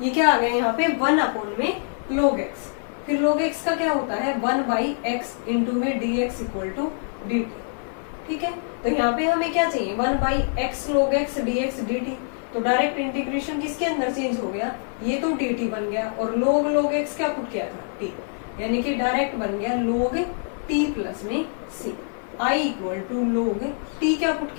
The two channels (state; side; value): silent; right; 62 dB below the other